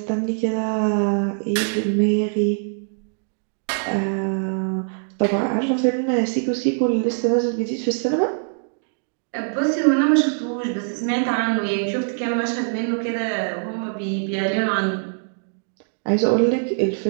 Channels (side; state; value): left; silent; digital silence